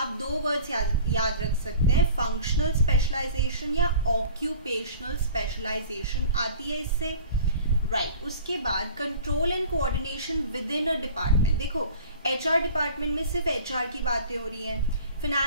दो वर्ड्स याद रख सकते हैं, फंक्शनल स्पेशलाइजेशन या ऑक्यूपेशनल स्पेशलाइजेशन आती है इससे, राइट। उसके बाद control and coordination within a department. देखो HR डिपार्टमेंट में सिर्फ HR की बातें हो रही हैं,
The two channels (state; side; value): inverted; both; correlation -0.43